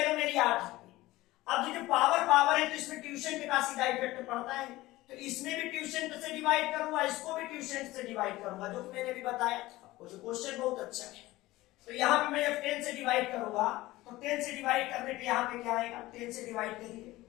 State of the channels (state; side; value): quieter; right; 18.1 dB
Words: मेरी 8 है। अब जो पावर है तो इसमें ट्यूशन का सीधा इफेक्ट पड़ता है, तो इसमें भी ट्यूशन से डिवाइड करूंगा, इसको भी ट्यूशन से डिवाइड करूंगा, जो मैंने भी बताया था। वो जो क्वेश्चन बहुत अच्छा है। तो यहाँ पे मैं जब 10 से डिवाइड करूंगा तो 10 से डिवाइड करने पे यहाँ पे क्या आएगा, 10 से डिवाइड करिए